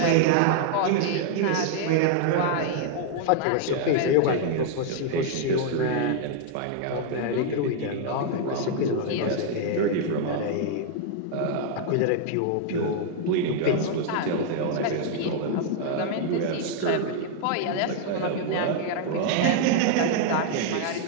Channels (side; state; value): both; different; correlation 0.00